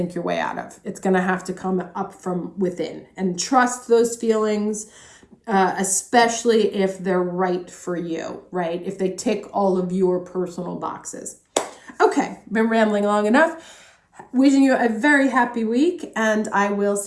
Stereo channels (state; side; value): identical; both; correlation 1.00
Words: your way out of. It's going to have to come up from within, and trust those feelings, especially if they're right for you, right? If they tick all of your personal boxes. Okay, been rambling long enough. Wishing you a very happy week, and I will